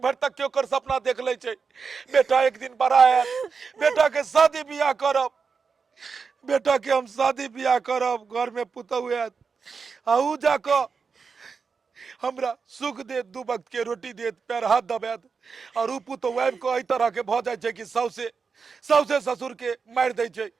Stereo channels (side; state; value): left; quieter; 5.3 dB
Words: तक के ओकर सपना देख ले छे। बेटा एक दिन बड़ा है, बेटा के शादी बियाह करब, बेटा के हम शादी बियाह करब, घर में पुतौ है, आऊ जाको हमरा सुख दे, दू वक्त के रोटी दे, पैर हाथ दबात, और उ पुतौ आबि को एहि तरह के भ जाय छे कि सौसे ससुर के मार दे छे,